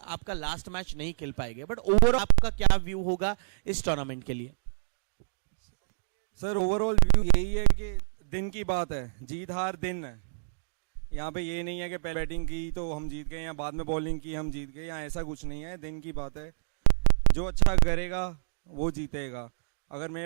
लास्ट मैच नहीं खेल पाएंगे, बट ओवरऑल आपका क्या व्यू होगा इस टूर्नामेंट के लिए? सर ओवरऑल व्यू यही है कि दिन की बात है, जीत हार दिन है। यहाँ पे ये नहीं है कि पहले बैटिंग की तो हम जीत गए या बाद में बॉलिंग की हम जीत गए, यहाँ ऐसा कुछ नहीं है, दिन की बात है। जो अच्छा करेगा वो जीतेगा। अगर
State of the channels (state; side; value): silent; left; digital silence